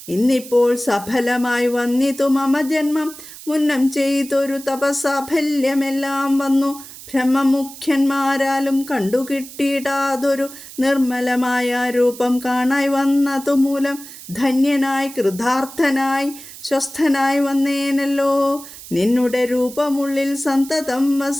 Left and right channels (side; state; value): right; noise; hiss, 15 dB below the sound